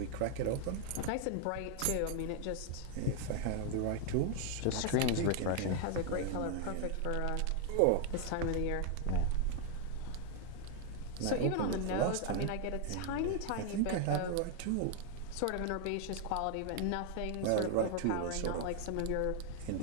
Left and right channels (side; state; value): both; different; correlation 0.00